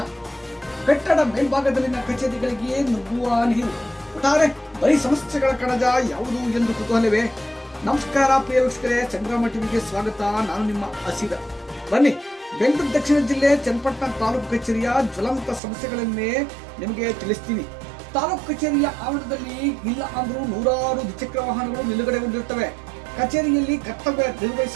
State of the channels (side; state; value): left; drops out; at 15.6 s